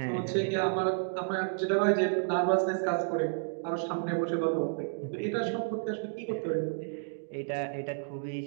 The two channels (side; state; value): left; silent; digital silence